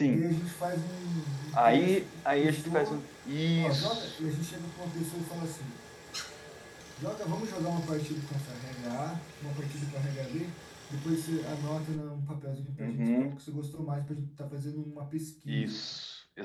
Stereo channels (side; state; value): both; identical; correlation 1.00